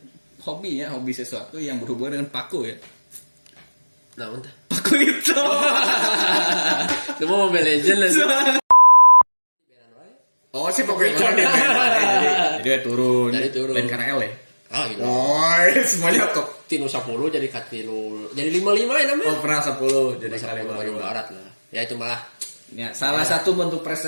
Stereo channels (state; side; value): inverted; both; correlation -1.00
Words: hobi sesuatu yang berhubungan dengan paku ya. Nah, entah. Paku itu. Cuma Mobile Legends lah. Oh, si paku itu jadi turun. Lain karena L ya. Oh, iya. Oh, semuanya top. Tinu 10 jadi katinu. Jadi 55 ya namanya. Oh, pernah 10 jadi kali baru barat lah. Ya itu malah. Ya, salah satu bentuk